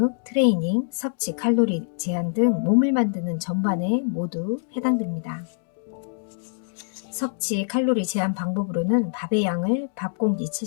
트레이닝, 섭취, 칼로리 제한 등 몸을 만드는 전반에 모두 해당됩니다. 섭취 칼로리 제한 방법으로는 밥의 양을 밥 공기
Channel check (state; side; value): silent; right; digital silence